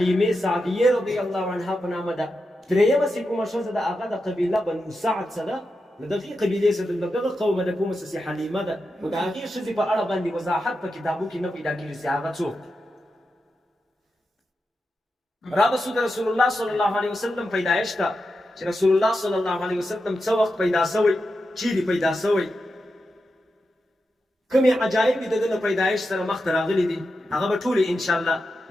سعدیې رضی الله عنها په نامه ده. درېیمه چې کومه ښځه ده هغه د قبیله بنو سعد څه ده، د دغې قبیلې څه د دغه قومه د کومه څه حلیمه ده. خو د هغې ښځې په اړه باندې وضاحت په کتابو کې نه پیدا کېږي چې هغه څوک. رابسو د رسول الله صلی الله علیه وسلم پیدایش ته چې رسول الله صلی الله علیه وسلم څه وخت پیدا شوی، چیرې پیدا شوی، کومې عجایب د ده له پیدایش سره مخته راغلي دي، هغه به ټولې انشاءالله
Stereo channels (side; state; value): both; normal; correlation 0.89